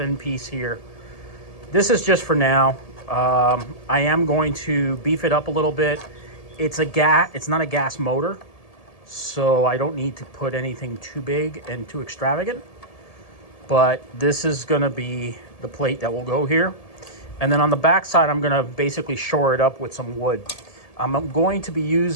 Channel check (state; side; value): late; right; 1.7 ms